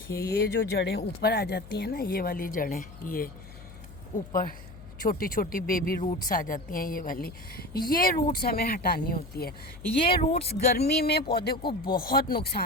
ये जो जड़ें ऊपर आ जाती हैं ना, ये वाली जड़ें, ये ऊपर छोटी छोटी बेबी रूट्स आ जाती हैं, ये वाली, ये रूट्स हमें हटानी होती है। ये रूट्स गर्मी में पौधे को बहुत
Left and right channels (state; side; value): noise; left; hum, 17 dB below the sound